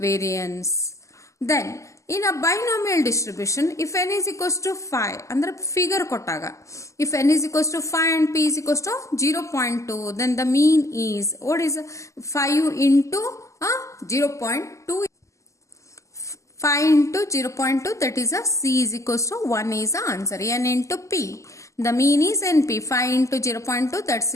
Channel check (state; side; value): late; right; 0.15 ms